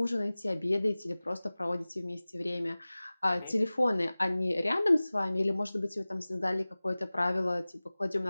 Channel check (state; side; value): inverted; both; correlation -0.98